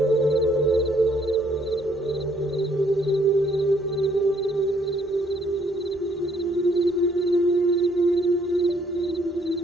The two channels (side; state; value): both; normal; correlation 0.67